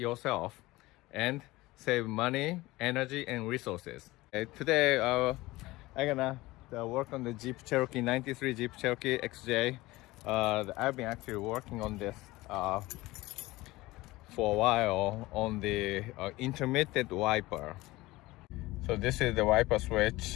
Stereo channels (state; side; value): quieter; right; 19.5 dB